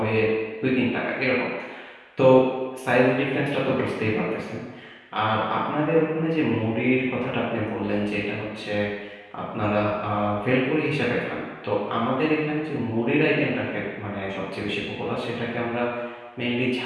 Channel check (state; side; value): identical; both; correlation 1.00